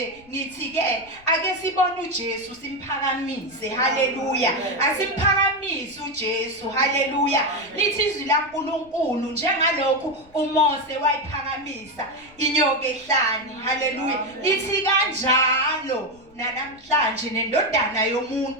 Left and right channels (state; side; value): noise; left; rumble, 27 dB below the sound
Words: ngithi ke ake sibone uJesu simphakamise. Haleluya. Asiphakamise uJesu. Haleluya. Lithi izwi laNkulunkulu njengalokhu uMose wayiphakamisa inyoka ehlane. Haleluya. Lithi kanjalo namhlanje nendodana